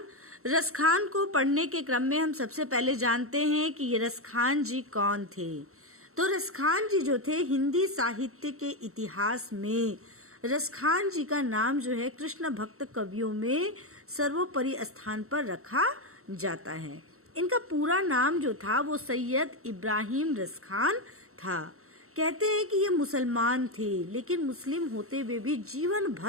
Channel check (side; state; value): left; late; 0.63 ms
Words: रसखान को पढ़ने के क्रम में हम सबसे पहले जानते हैं कि ये रसखान जी कौन थे। तो रसखान जी जो थे, हिंदी साहित्य के इतिहास में रसखान जी का नाम जो है कृष्ण भक्त कवियों में सर्वोपरि स्थान पर रखा जाता है। इनका पूरा नाम जो था वो सैयद इब्राहिम रसखान था। कहते हैं कि ये मुसलमान थे, लेकिन मुस्लिम होते हुए भी जीवन